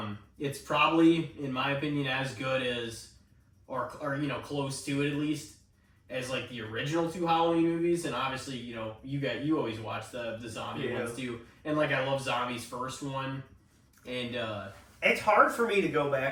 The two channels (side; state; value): both; identical; correlation 1.00